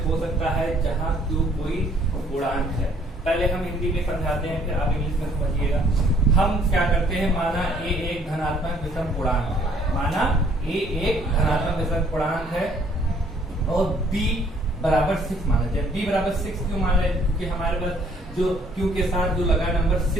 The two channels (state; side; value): normal; both; correlation 0.62